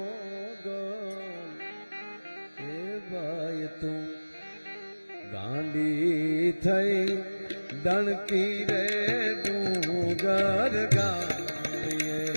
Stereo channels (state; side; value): inverted; both; correlation -1.00